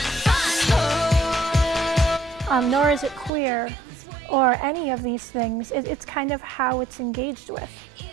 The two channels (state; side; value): drops out; left; at 3.3 s